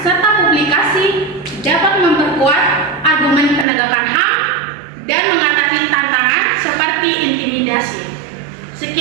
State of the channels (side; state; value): left; drops out; at 3.7 s